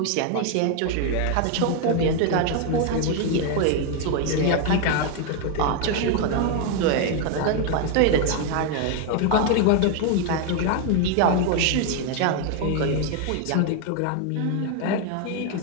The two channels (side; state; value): both; different; correlation 0.01